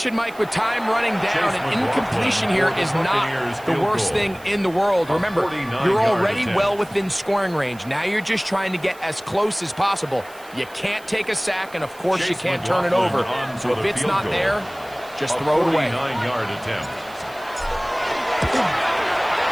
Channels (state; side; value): noise; right; hiss, 23 dB below the sound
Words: Mike, with time running down, an incompletion here is not the worst thing in the world. Remember, you're already well within scoring range. Now you're just trying to get as close as possible. You can't take a sack, and of course you can't turn it over. So if it's not there, just throw it away. 49-yard attempt.